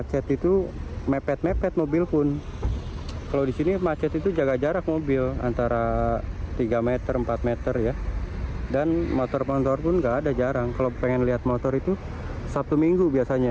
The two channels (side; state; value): both; identical; correlation 1.00